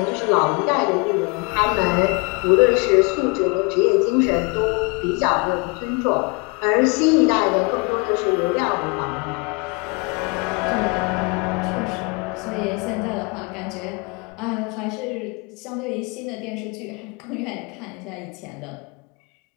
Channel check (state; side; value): quieter; right; 30.4 dB